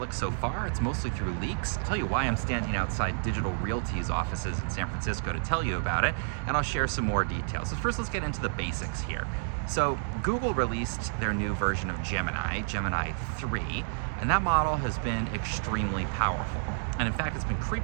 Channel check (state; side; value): silent; left; digital silence